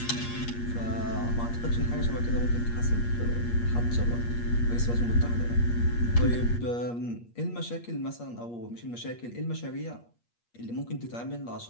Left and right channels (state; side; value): late; right; 8.5 ms